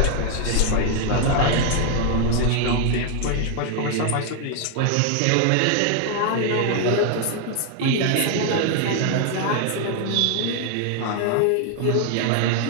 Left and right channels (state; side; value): different; both; correlation 0.00